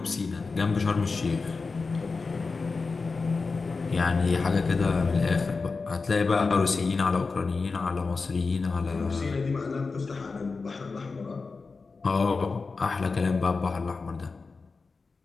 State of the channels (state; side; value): quieter; right; 4.3 dB